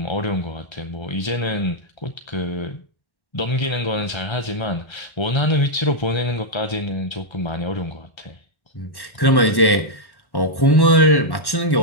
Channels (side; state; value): right; late; 1.1 ms